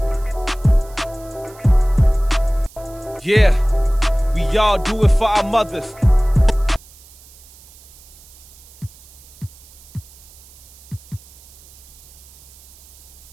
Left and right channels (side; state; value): right; noise; hiss, 23 dB below the sound